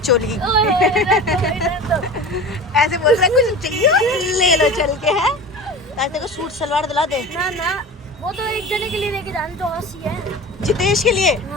ऐसे बोल रहे हैं कुछ चाहिए ले लो चल के, है ताकि को सूट सलवार दिला दे। ना वो तो एक जने के लिए लेके जाने तो हंसी है। जितेश के लिए?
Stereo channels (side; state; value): both; normal; correlation 0.34